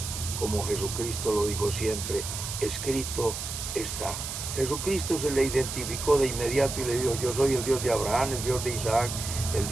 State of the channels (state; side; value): noise; right; hiss, 6 dB below the sound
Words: como Jesucristo lo dijo siempre: escrito está. Jesucristo se le identificó de inmediato y le dijo: yo soy el Dios de Abraham, el Dios de Isaac, el